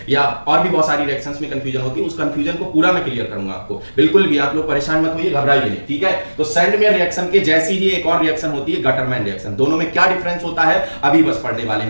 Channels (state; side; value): inverted; both; correlation -1.00